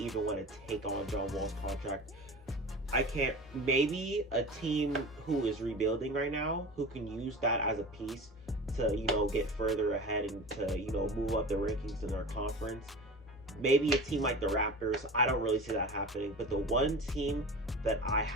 want to take on John Wall's contract. I can't. Maybe a team who is rebuilding right now, who can use that as a piece to, get further ahead and to, move up the rankings in their conference. Maybe a team like the Raptors. I don't really see that happening. But the one team that I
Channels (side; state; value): both; normal; correlation 0.34